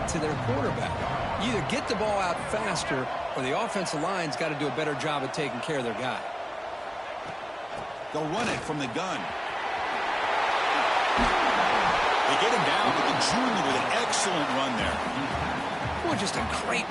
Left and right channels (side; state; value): both; identical; correlation 1.00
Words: to their quarterback. You either get the ball out faster, or the offensive line's got to do a better job of taking care of their guy. They'll run it from the gun. They get him down to the junior with an excellent run there. Well, just a great